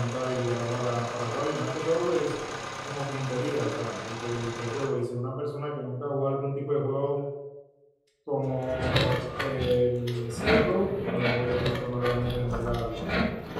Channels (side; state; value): both; identical; correlation 1.00